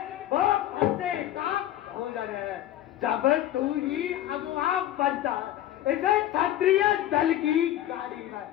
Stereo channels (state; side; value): quieter; right; 13.0 dB